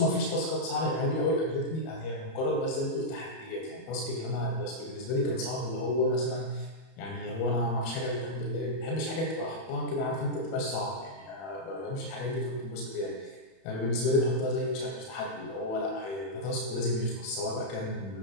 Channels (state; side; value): late; right; 31 ms